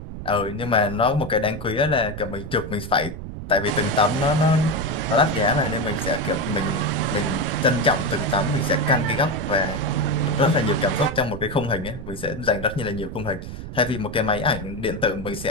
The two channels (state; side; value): noise; right; rumble, 9 dB below the sound